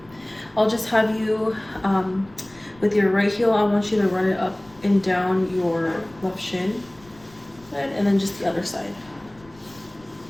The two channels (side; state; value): left; noise; rumble, 26 dB below the sound